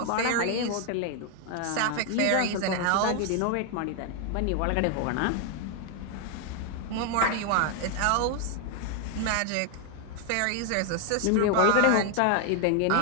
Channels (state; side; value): different; both; correlation 0.01